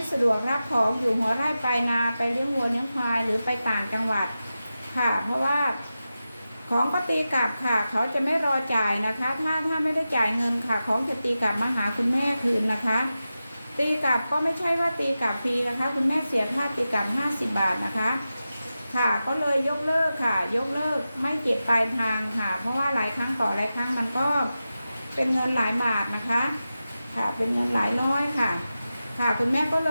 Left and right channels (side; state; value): both; inverted; correlation -0.93